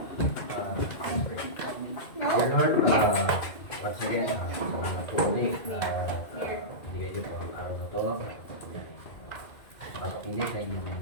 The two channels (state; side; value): late; right; 2.3 ms